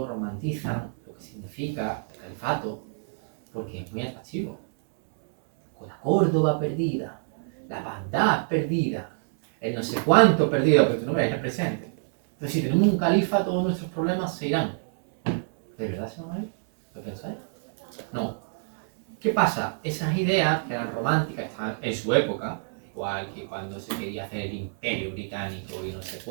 romantizan lo que significa el califato, porque es muy atractivo. Con la Córdoba perdida, la Bagdad perdida, el no sé cuánto perdido, pero tú no veas el presente. Entonces, si tenemos un califa, todos nuestros problemas se irán. ¿De verdad se van a ir? ¿Lo pensáis? No. ¿Qué pasa? Esas ideas que eran románticas, estaban en su época, igual que cuando se quería hacer el imperio británico y no sé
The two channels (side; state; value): left; silent; digital silence